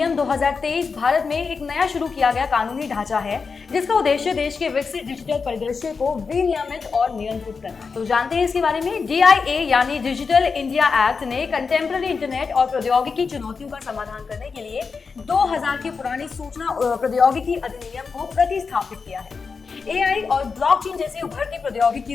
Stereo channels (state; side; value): quieter; right; 5.1 dB